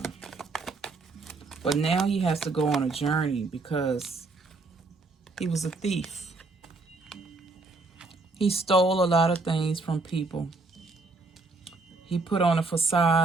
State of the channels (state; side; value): quieter; left; 3.5 dB